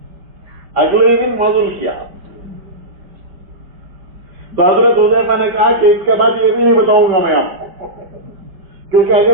اگلے ہی دن معذور کیا. تو حضرت حذیفہ نے کہا کہ اس کے بعد یہ بھی نہیں بتاؤں گا میں آپ کو, کیونکہ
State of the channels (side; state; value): left; late; 5.1 ms